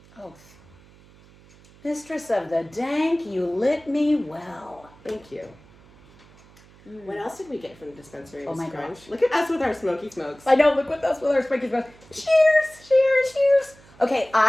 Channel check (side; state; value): right; noise; hum, 26 dB below the sound